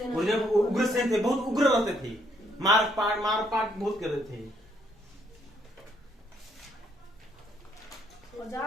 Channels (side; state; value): both; normal; correlation 0.70